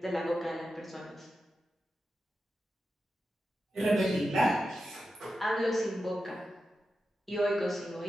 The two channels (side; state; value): both; normal; correlation 0.90